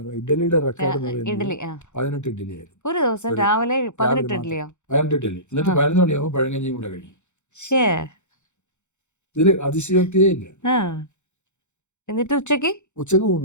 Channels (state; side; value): late; right; 0.83 ms